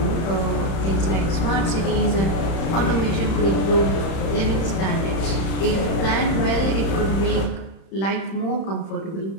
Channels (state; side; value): late; right; 31 ms